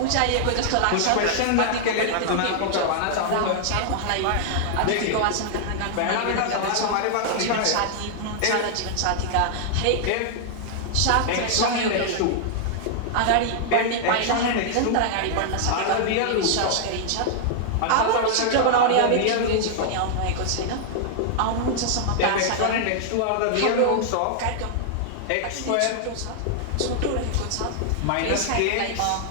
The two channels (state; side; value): different; both; correlation -0.01